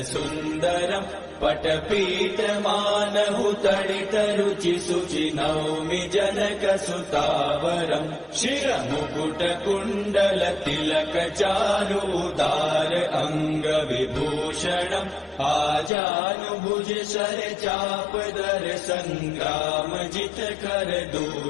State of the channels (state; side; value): drops out; right; at 15.9 s